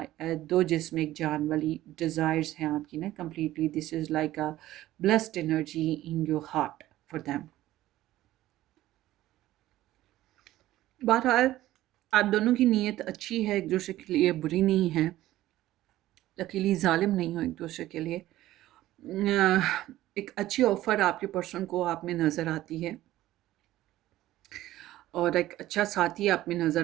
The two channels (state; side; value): quieter; left; 15.1 dB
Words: दो जिस्म एक जान वाली डिज़ायर्स हैं आपकी ना completely. This is like a blessed energy in your heart for them. बहरहाल आप दोनों की नीयत अच्छी है, एक दूसरे के लिए बुरी नहीं है. अकेली जालिम नहीं हो एक दूसरे के लिए. एक अच्छी ऑफ़र आपके पर्सन को आप में नज़र आती है और एक अच्छा साथी आप में